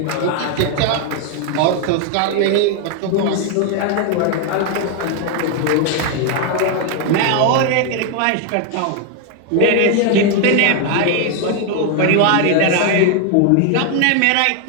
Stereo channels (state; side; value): different; both; correlation 0.01